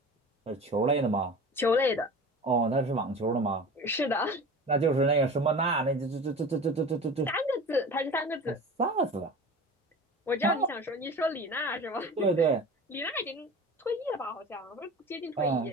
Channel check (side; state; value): both; normal; correlation 0.36